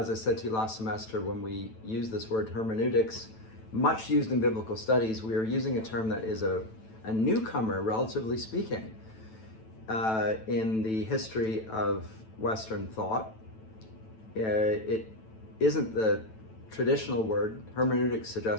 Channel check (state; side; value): late; right; 9.1 ms